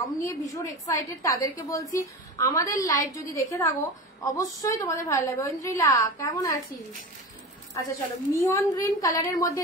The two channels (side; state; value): both; normal; correlation 0.29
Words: নিয়ে ভীষণ এক্সাইটেড তাদেরকে বলছি আমাদের লাইভ যদি দেখে থাকো অবশ্যই তোমাদের ভালো লাগবে। ঐন্দ্রিলা কেমন আছিস? আচ্ছা চলো মিয়ন গ্রিন কালারের মধ্যে